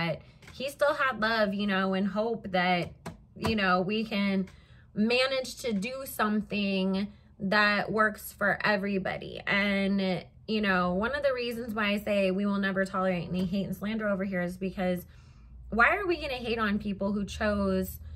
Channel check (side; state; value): both; identical; correlation 1.00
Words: he still had love, you know, and hope that, you know, we can manage to do something that works for everybody. And you know, one of the reasons why I say we will never tolerate any hate and slander over here is because why are we going to hate on people who chose